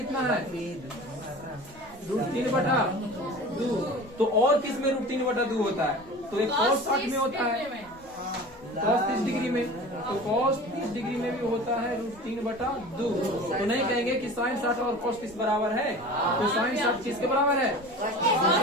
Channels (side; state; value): right; noise; rumble, 25 dB below the sound